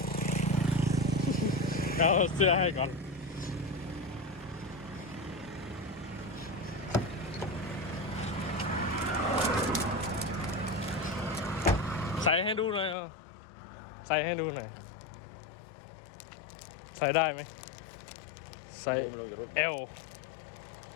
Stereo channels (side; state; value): right; drops out; at 13.0 s